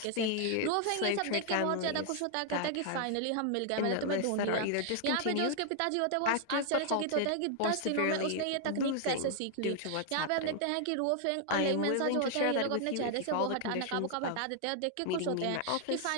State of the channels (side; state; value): both; different; correlation 0.00